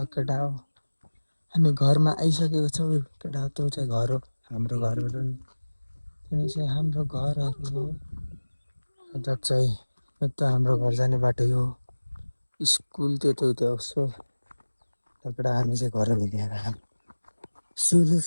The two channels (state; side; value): inverted; both; correlation -1.00